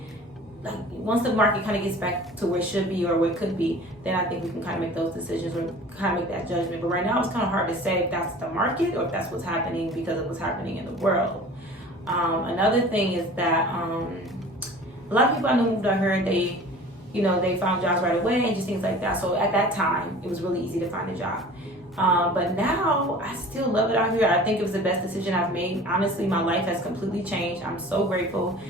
like once the market kind of gets back to where it should be or where it could be, then I think we can kind of make those decisions or kind of make that judgment. But right now it's kind of hard to say if that's the market or if that's what's happening because of what's happening in the world. Another thing is that a lot of people I know moved out here, they, you know, they found jobs right away and just things like that. So at that time, it was really easy to find a job. But now I still love it out here. I think it was the best decision I've made. Honestly, my life has completely changed. I'm so grateful.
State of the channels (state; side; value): normal; both; correlation 0.43